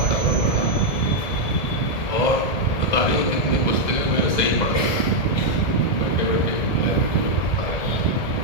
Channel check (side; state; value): right; late; 1.8 ms